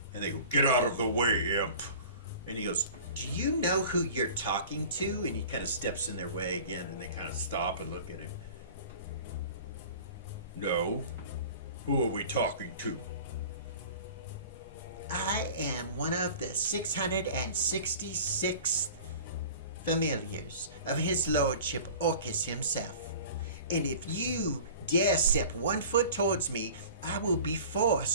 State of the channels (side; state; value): both; inverted; correlation -0.42